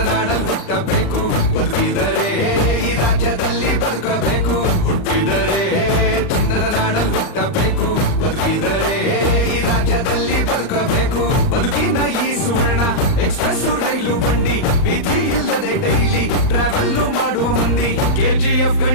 ಹುಟ್ಟಬೇಕು, ಬದುಕಿದರೆ ಈ ರಾಜ್ಯದಲ್ಲಿ ಬದುಕಬೇಕು. ಹುಟ್ಟಿದರೆ ಚಿನ್ನದ ನಾಡಲ್ಲಿ ಹುಟ್ಟಬೇಕು, ಬದುಕಿದರೆ ಈ ರಾಜ್ಯದಲ್ಲಿ ಬದುಕಬೇಕು. ಬದುಕಿನ ಈ ಸುವರ್ಣ ಎಕ್ಸ್ಪ್ರೆಸ್ ರೈಲು ಬಂಡಿ, ವಿಧಿ ಇಲ್ಲದೆ ಡೈಲಿ ಟ್ರಾವೆಲ್ ಮಾಡುವ ಮಂದಿ. KGF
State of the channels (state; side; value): late; right; 38 ms